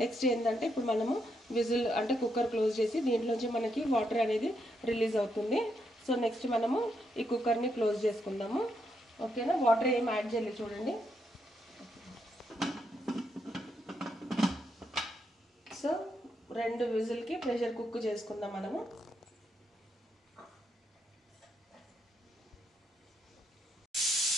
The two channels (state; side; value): normal; both; correlation 0.79